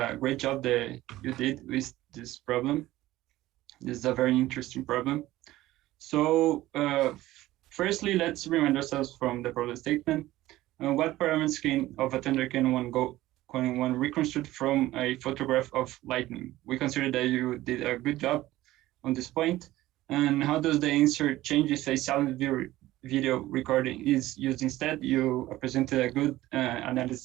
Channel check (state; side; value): quieter; left; 16.2 dB